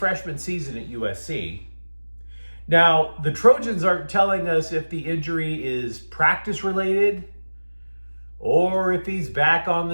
season at USC. Now, the Trojans aren't telling us if the injury is practice-related or if he's back on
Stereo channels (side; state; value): both; inverted; correlation -1.00